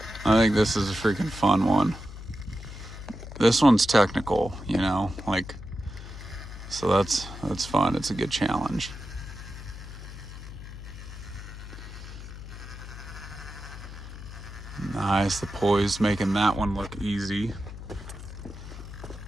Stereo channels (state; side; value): noise; left; hum, 12 dB below the sound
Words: I think this is a freaking fun one. This one's technical, you know, like, so that's fun. It's a good challenge. Nice, the poise making that one look easy.